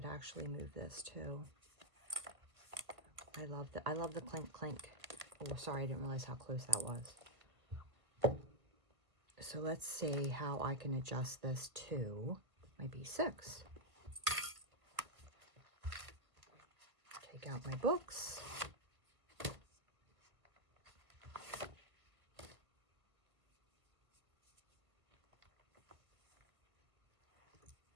actually move this too. I love the clink clink. Oh, sorry, I didn't realize how close that was. So let's see how I can adjust this to my B6. Take out my books.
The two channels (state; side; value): late; left; 1.3 ms